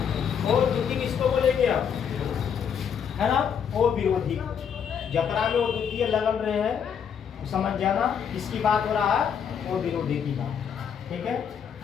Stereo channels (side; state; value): right; quieter; 7.6 dB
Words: ओ द्वितीय किसको बोलेंगे आप, है ना, ओ विरोधी। जकरा में वो द्वितीय लगन रहे हैं, समझ जाना किसकी बात हो रहा है, ओ विरोधी की बात। ठीक है,